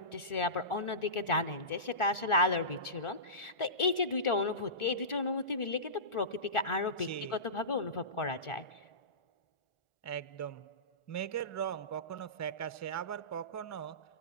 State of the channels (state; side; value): late; right; 1.4 ms